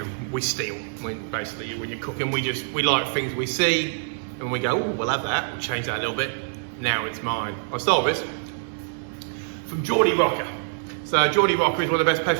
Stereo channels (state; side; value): silent; left; digital silence